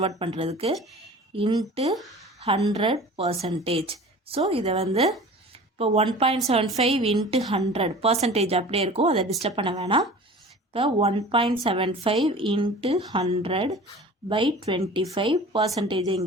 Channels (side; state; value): both; normal; correlation 0.41